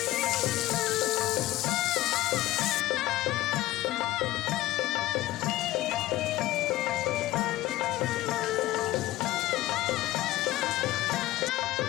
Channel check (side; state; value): right; quieter; 16.3 dB